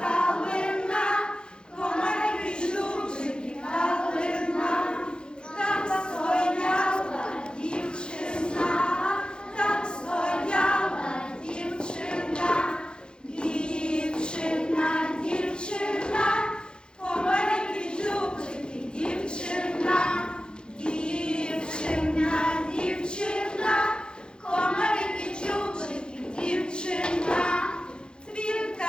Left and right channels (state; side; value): late; right; 0.049 ms